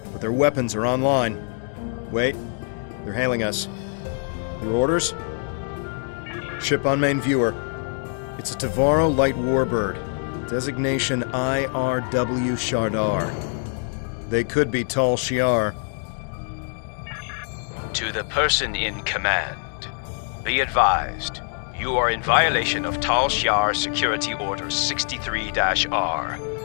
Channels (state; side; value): silent; right; 57 dB below the other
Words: but their weapons are online. Wait, they're hailing us. Your orders? Ship on main viewer. It's a Tavaro light warbird. Designation IRW Shardar. They could be Tal Shiar. To the person in command, be advised, you are in violation of Tal Shiar Security Order 63-R.